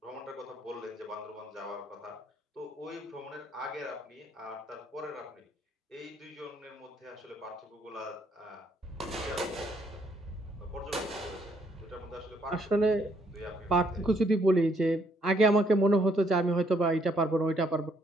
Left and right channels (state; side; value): normal; both; correlation 0.70